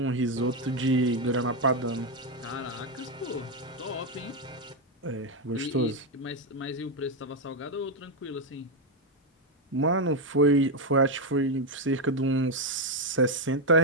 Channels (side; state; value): both; normal; correlation 0.05